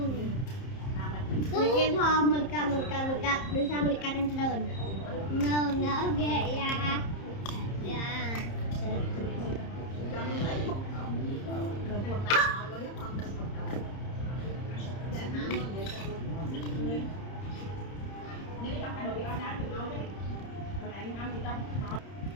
Cái bò mình cầm đưa sang mình cầm trong trời. Nó ghê ya.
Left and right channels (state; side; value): late; right; 30 ms